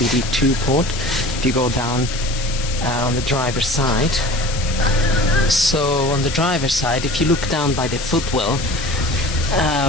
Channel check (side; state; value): left; noise; hiss, 9 dB below the sound